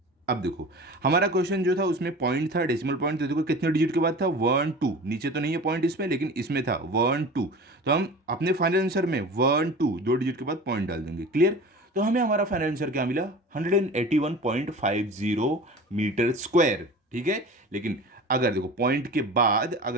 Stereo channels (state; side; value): normal; both; correlation 0.37